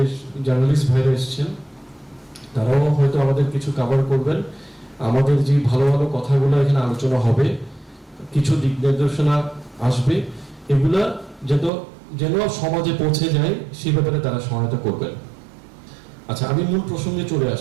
জার্নালিস্ট ভাইরা এসেছেন, তারাও হয়তো আমাদের কিছু কভার করবেন। আমাদের যে ভালো ভালো কথাগুলো এখানে আলোচনা হবে, কিছু দিক নির্দেশনা আসবে, এগুলা যেন সমাজে পৌঁছে যায়, সেই ব্যাপারে তারা সহায়তা করবেন। আচ্ছা, আমি মূল প্রসঙ্গে চলে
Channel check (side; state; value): left; drops out; at 11.7 s